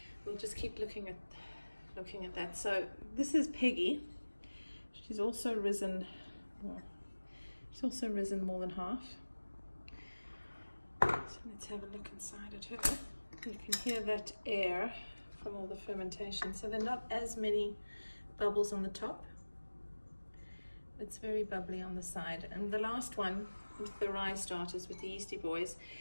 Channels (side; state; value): both; inverted; correlation -1.00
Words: we'll just keep looking at that. So this is Peggy. She's also risen more than half. So let's have a look inside at her. You can hear that air from all the fermentation. So there are not as many bubbles on the top. It's very bubbly on the side. And the last one with the rye starters, with the yeasty boys,